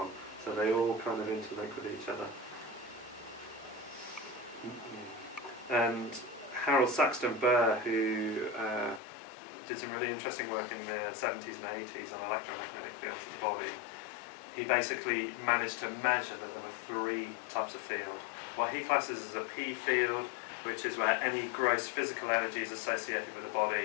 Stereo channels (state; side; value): drops out; right; at 9.0 s